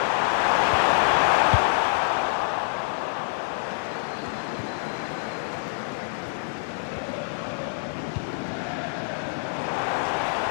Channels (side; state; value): right; silent; digital silence